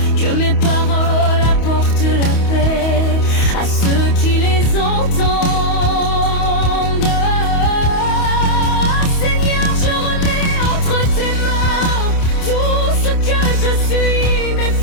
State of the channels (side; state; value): right; late; 28 ms